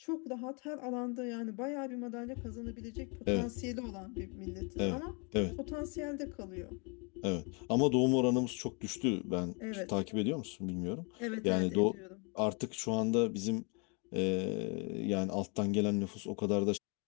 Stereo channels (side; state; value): right; quieter; 33.7 dB